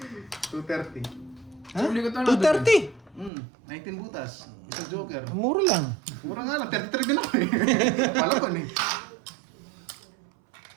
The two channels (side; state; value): left; drops out; at 3.3 s